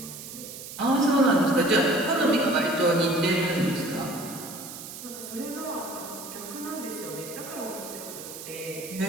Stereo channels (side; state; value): right; noise; hiss, 12 dB below the sound